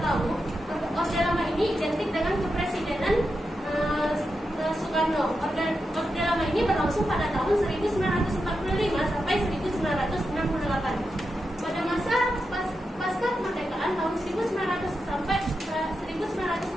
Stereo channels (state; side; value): normal; both; correlation 0.88